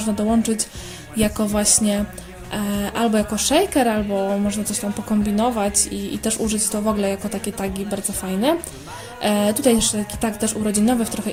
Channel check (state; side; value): identical; both; correlation 1.00